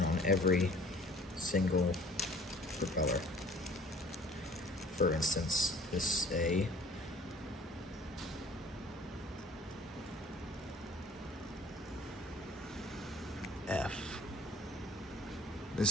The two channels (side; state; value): both; normal; correlation 0.51